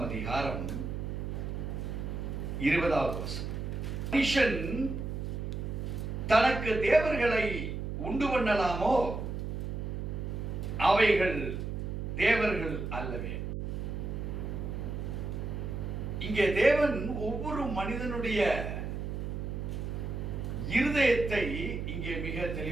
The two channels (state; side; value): noise; right; hum, 4 dB below the sound